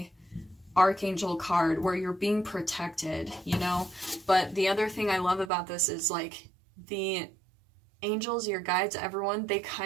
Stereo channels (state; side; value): drops out; left; at 5.5 s